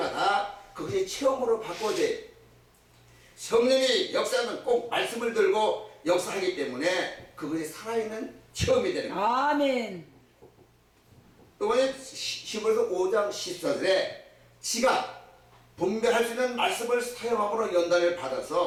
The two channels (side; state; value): both; identical; correlation 1.00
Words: 그것이 체험으로 바꿔져요. 성령이 역사는 꼭 말씀을 들고 역사하기 때문에 그것이 살아있는 체험이 되는 거예요. 아멘. 이번에 히브리서 5장 14절에 지가 분별할 수 있는 말씀을 사용함으로 연단을